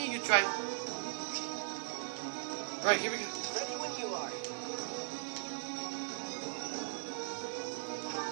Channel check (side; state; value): left; silent; 52 dB below the other